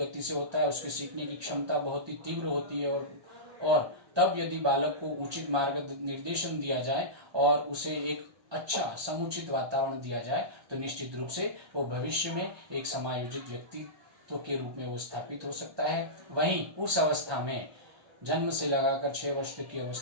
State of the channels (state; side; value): late; left; 1.2 ms